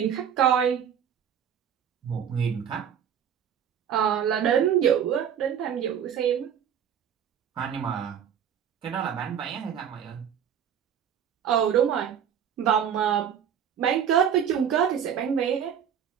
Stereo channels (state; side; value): quieter; left; 8.6 dB